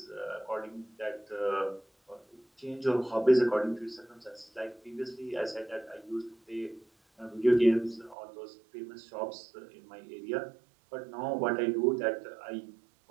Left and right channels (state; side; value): drops out; left; at 8.2 s